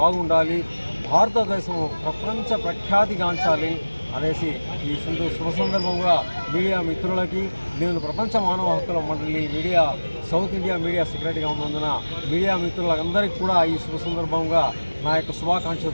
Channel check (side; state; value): both; inverted; correlation -1.00